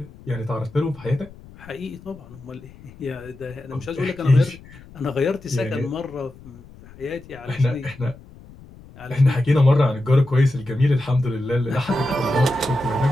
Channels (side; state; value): left; noise; rumble, 21 dB below the sound